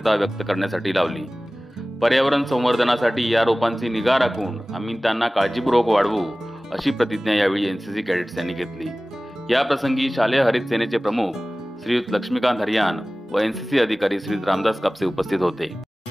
व्यक्त करण्यासाठी लावली। पर्यावरण संवर्धनासाठी या रोपांची निगा राखून आम्ही त्यांना काळजीपूर्वक वाढवू अशी प्रतिज्ञा यावेळी एनसीसी कॅडेट्स यांनी घेतली। या प्रसंगी शालेय हरित सेनेचे प्रमुख श्रीयुत लक्ष्मीकांत हरियान व एनसीसी अधिकारी श्री रामदास कापसे उपस्थित होते।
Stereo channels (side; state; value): both; normal; correlation 0.98